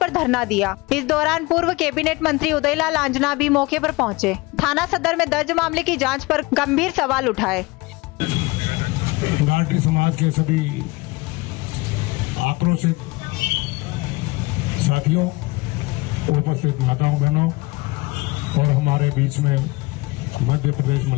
धरना दिया। इस दौरान पूर्व कैबिनेट मंत्री उदयलाल आंजना भी मौके पर पहुंचे। थाना सदर में दर्ज मामले की जांच पर गंभीर सवाल उठाए। गायरी समाज के सभी आक्रोशित साथियों, उपस्थित माताओं बहनों और हमारे बीच में मध्य प्रदेश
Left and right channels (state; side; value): quieter; right; 23.6 dB